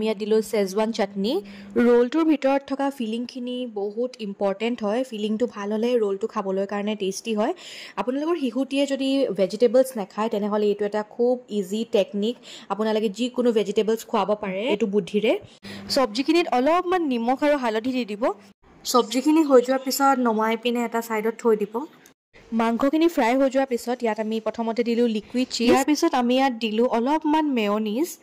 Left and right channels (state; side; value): identical; both; correlation 1.00